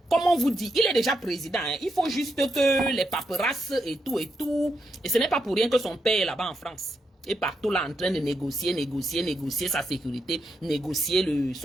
comme on vous dit, il est déjà président. Hein. Il faut juste que les paperasses et tout et tout. Et ce n'est pas pour rien que son père est là-bas en France. Et partout là en train de négocier sa sécurité, négocier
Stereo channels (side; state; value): both; normal; correlation 0.82